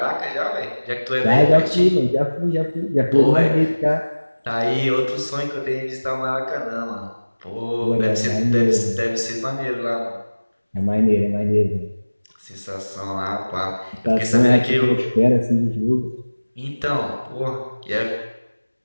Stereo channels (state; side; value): inverted; both; correlation -1.00